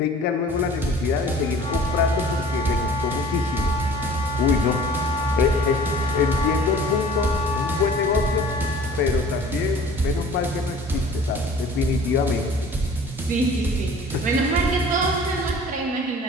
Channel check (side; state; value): both; normal; correlation 0.47